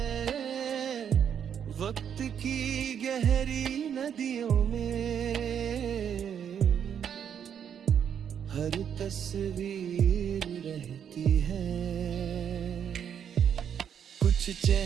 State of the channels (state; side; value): quieter; left; 8.4 dB